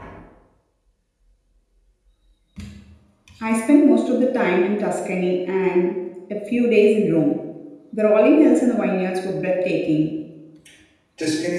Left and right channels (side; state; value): both; identical; correlation 1.00